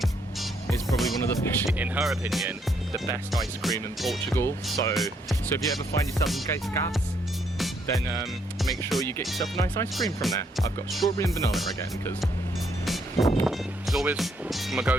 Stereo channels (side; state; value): both; normal; correlation 0.72